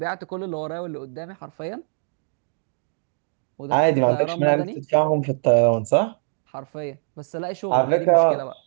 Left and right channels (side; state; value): left; silent; digital silence